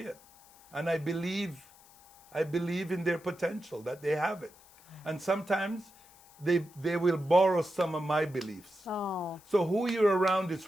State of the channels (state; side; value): noise; left; hiss, 26 dB below the sound